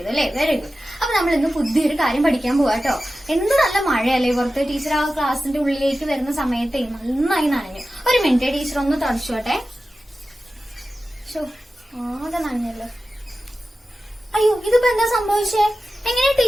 അല്ലേ? Very good. അപ്പൊ നമ്മൾ ഇന്ന് പുതിയൊരു കാര്യം പഠിക്കാൻ പോവാ കേട്ടോ. എന്ത് നല്ല മഴയല്ലേ പുറത്ത്. ടീച്ചർ ആ ക്ലാസ്സിന്റെ ഉള്ളിലേക്ക് വരുന്ന സമയത്ത് നന്നായി നനഞ്ഞു. ഒരു മിനിറ്റ്, ടീച്ചർ ഒന്ന് തുടച്ചോട്ടെ. ആകെ നനഞ്ഞല്ലോ. അയ്യോ, ഇതിപ്പോ എന്താ സംഭവിച്ചേ? എങ്ങനെ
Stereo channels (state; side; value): normal; both; correlation 0.94